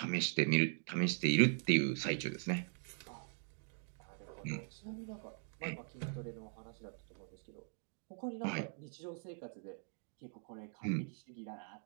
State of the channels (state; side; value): silent; left; 50 dB below the other